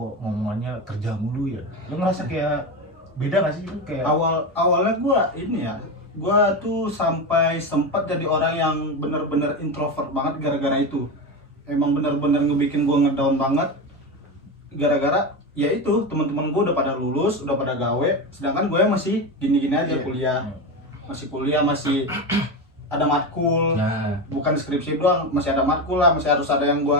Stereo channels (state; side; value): normal; both; correlation 0.18